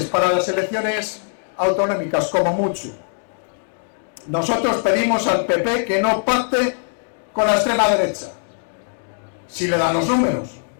para las elecciones autonómicas, como mucho. Nosotros pedimos al PP que no pacte con la extrema derecha. Si le dan los números,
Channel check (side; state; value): right; silent; digital silence